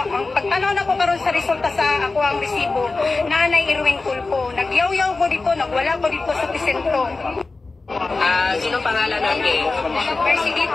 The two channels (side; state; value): right; quieter; 3.6 dB